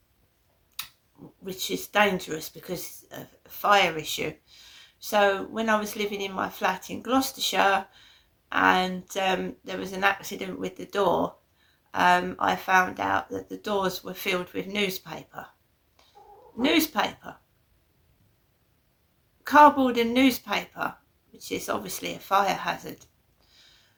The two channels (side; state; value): both; identical; correlation 1.00